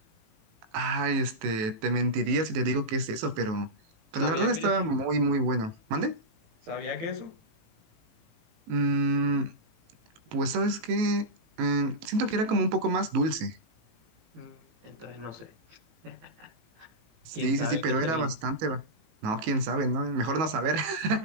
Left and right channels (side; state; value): left; late; 19 ms